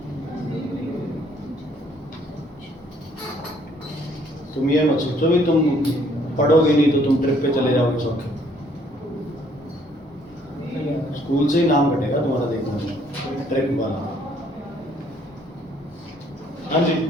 तुम ये मत सोचो भी तुम पढ़ोगे नहीं तो तुम ट्रिप पे चले जाओगे सब, स्कूल से ही नाम कटेगा तुम्हारा, देखना ट्रिप वाला। हाँ जी,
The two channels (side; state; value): both; normal; correlation 0.64